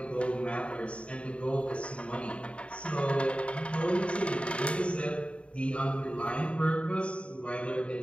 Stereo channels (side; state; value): right; late; 0.060 ms